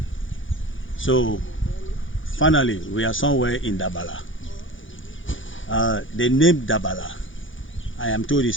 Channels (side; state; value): right; late; 0.57 ms